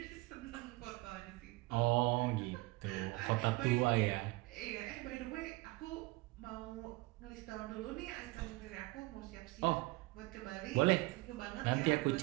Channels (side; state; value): left; quieter; 22.0 dB